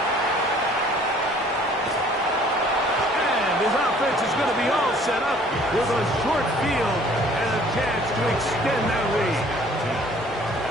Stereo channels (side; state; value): both; normal; correlation 0.55